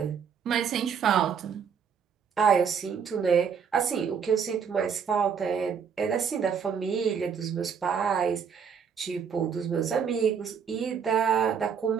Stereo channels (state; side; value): quieter; left; 6.9 dB